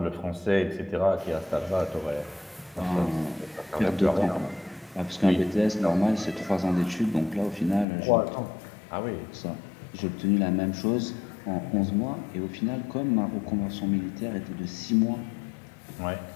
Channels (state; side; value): drops out; right; at 7.9 s